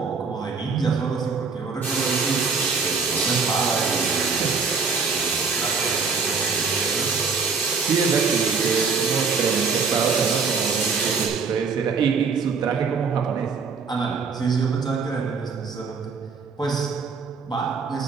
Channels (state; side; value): quieter; left; 5.1 dB